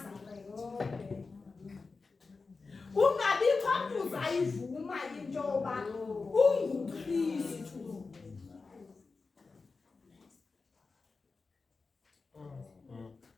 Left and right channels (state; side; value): quieter; right; 4.2 dB